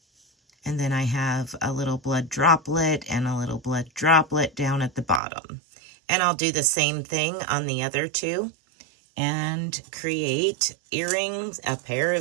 And then I have a little blood droplet and a little blood droplet down at the bottom. And I'll do the same thing on the other two and create earrings, a pair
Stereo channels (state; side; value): drops out; left; at 5.2 s